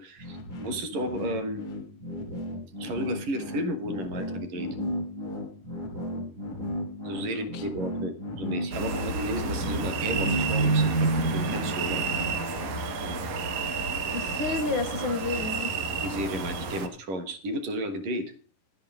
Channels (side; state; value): left; late; 11 ms